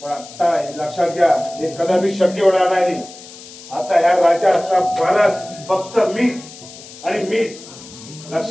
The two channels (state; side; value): noise; left; hiss, 17 dB below the sound